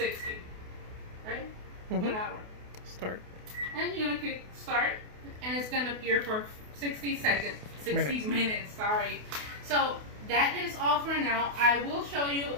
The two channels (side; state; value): left; late; 28 ms